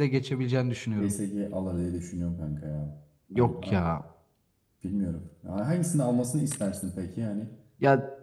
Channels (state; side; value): identical; both; correlation 1.00